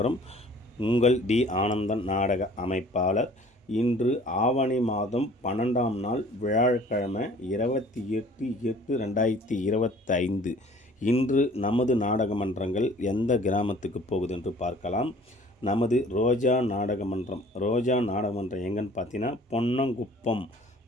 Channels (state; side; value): normal; both; correlation 0.51